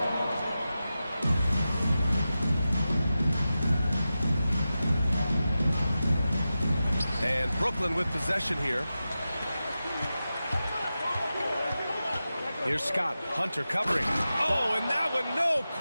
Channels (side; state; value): both; inverted; correlation -0.93